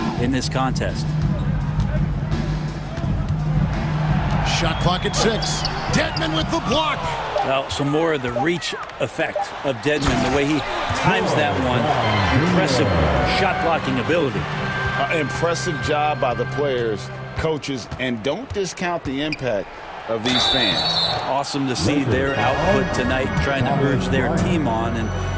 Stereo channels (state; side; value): identical; both; correlation 1.00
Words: in this contest. Shot clock at 6. Dedmon with the block. Well, some more of the reach effect of Dedmon, the way he times that one. Impressive shot blocking ability. Impressive job by the players, coaches, and don't discount the impact of these fans. Awesome to see their output tonight, trying to urge their team on, and